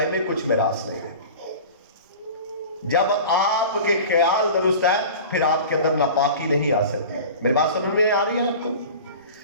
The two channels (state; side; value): inverted; both; correlation -0.37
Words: میں کچھ میراث نہیں ہے۔ جب آپ کے خیال درست ہے پھر آپ کے اندر ناپاکی نہیں آ سکتی۔ میری بات سمجھ میں آ رہی ہے آپ کو؟